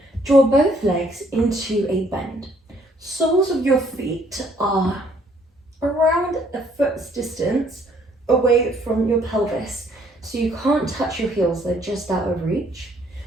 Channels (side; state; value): both; normal; correlation 0.64